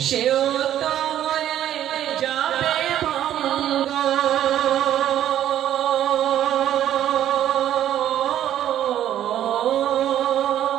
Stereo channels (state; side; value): quieter; left; 11.5 dB